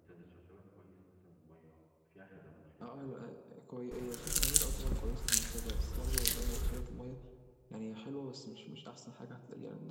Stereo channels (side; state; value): both; identical; correlation 1.00